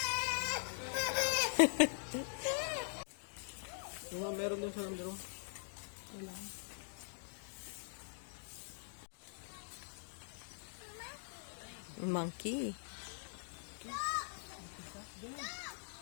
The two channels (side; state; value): right; silent; digital silence